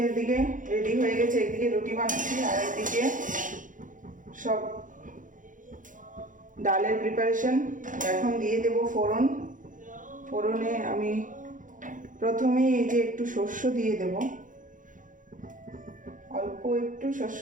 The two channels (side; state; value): left; late; 0.38 ms